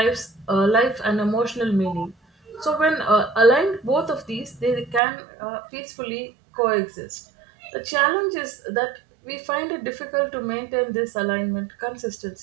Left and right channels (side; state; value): left; drops out; at 5.0 s